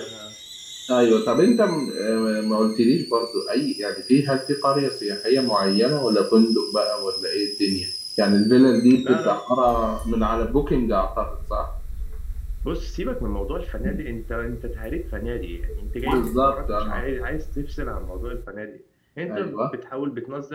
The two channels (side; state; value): both; identical; correlation 1.00